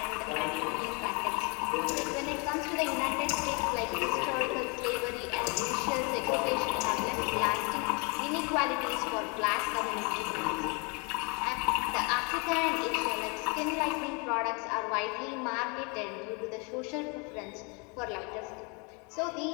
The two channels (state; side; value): quieter; right; 32.5 dB